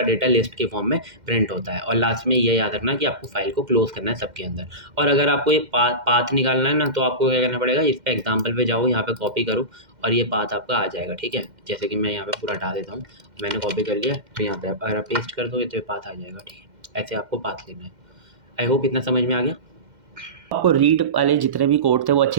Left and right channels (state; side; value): late; left; 2.1 ms